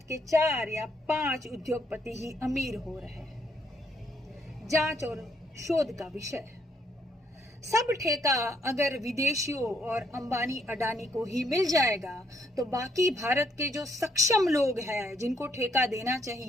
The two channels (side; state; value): both; normal; correlation 0.71